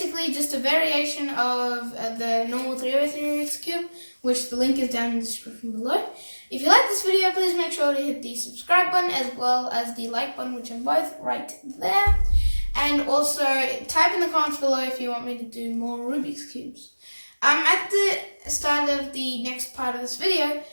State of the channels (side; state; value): both; inverted; correlation -1.00